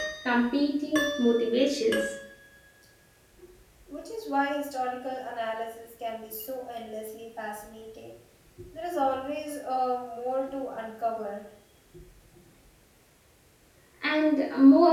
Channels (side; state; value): both; identical; correlation 1.00